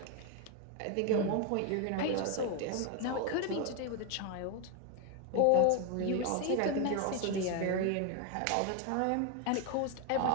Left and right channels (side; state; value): both; different; correlation 0.01